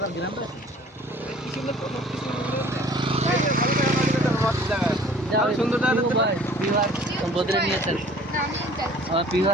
গ্রাম আছে সুন্দর বদলে নিয়েছেন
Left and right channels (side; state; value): both; normal; correlation 0.51